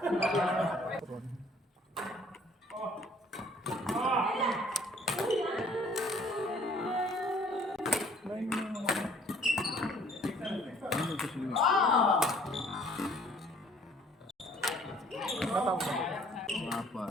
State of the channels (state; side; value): normal; both; correlation 0.57